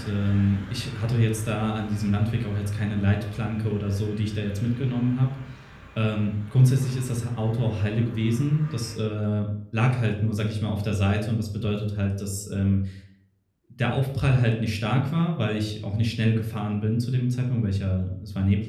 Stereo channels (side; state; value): both; identical; correlation 1.00